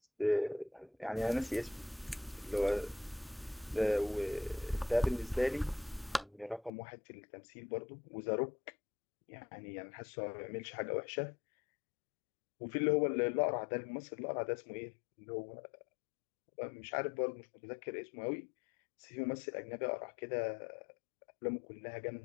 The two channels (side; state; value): right; drops out; at 6.7 s